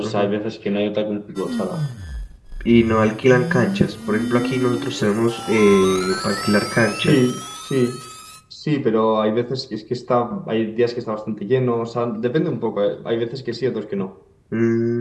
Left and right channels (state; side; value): identical; both; correlation 1.00